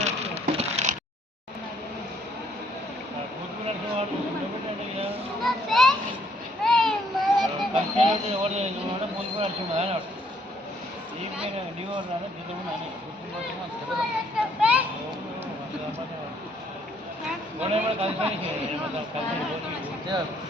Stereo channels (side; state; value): both; normal; correlation 0.67